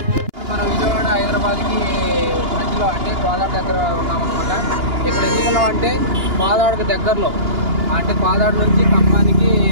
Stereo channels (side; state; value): left; late; 2.9 ms